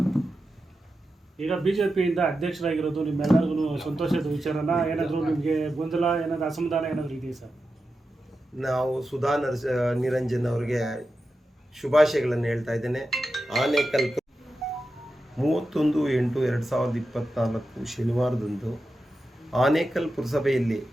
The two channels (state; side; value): normal; both; correlation 0.90